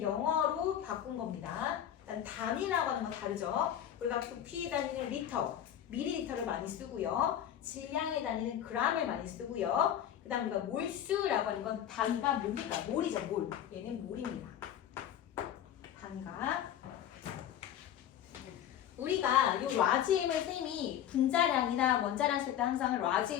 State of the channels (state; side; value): quieter; right; 10.4 dB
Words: 영어로 바꾼 겁니다. 일단 단위라고 하는 건 다르죠. 우리가 부피 단위는 리터, 밀리리터를 많이 쓰고요. 질량의 단위는 g을 많이 쓰고요. 그 다음 우리가 몰수라고 하는 건 단위가 뭡니까? 몰이죠, 몰. 얘는 몰입니다. 단위가. 우리가 요 라지엠을 쌤이 분자량이나 원자량 쓸 때 항상